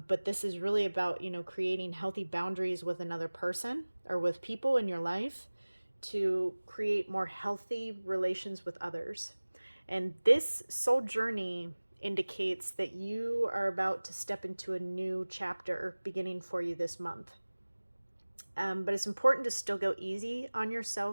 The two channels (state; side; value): inverted; both; correlation -1.00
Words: this is really about, creating healthy boundaries with another person or with people in your life to create more healthy relations with others. And this soul journey indicates that you are about to step into a new chapter beginning for you this month. But it's important to still go easy on